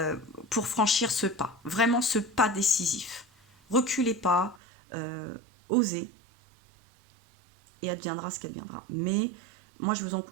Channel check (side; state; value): left; drops out; at 4.6 s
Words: pour franchir ce pas. Vraiment ce pas décisif. Reculez pas, osez, et adviendra ce qu'adviendra. Mais moi,